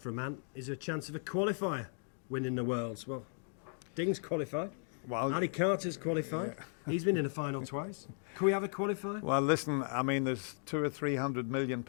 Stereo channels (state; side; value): silent; right; 54 dB below the other